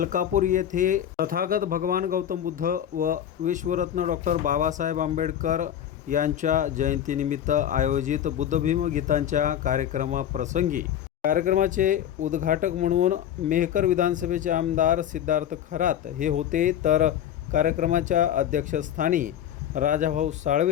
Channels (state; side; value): quieter; right; 10.3 dB